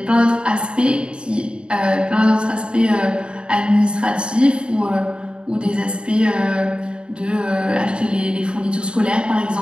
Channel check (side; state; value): left; late; 0.053 ms